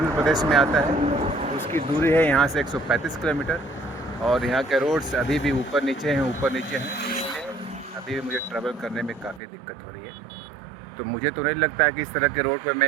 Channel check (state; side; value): drops out; left; at 9.4 s